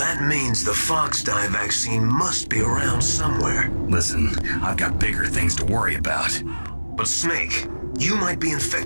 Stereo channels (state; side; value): inverted; both; correlation -1.00